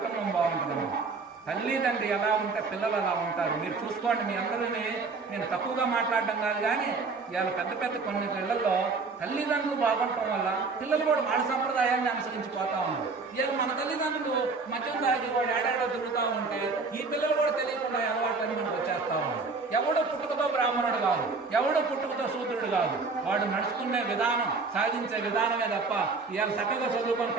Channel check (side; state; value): left; quieter; 4.2 dB